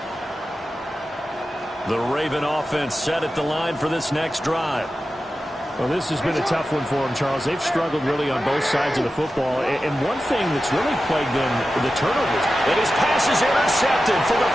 The Raven offense set at the line for this next drive. Well, this has been a tough one for them, Charles. They've struggled really on both sides of the football. And one thing that's really plagued them, the turnovers. And his pass is intercepted for the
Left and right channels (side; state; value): both; normal; correlation 0.93